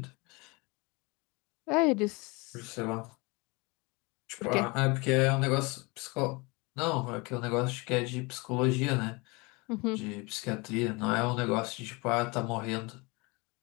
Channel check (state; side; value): quieter; right; 27.0 dB